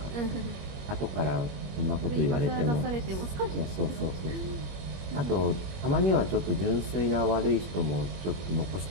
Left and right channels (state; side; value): late; left; 21 ms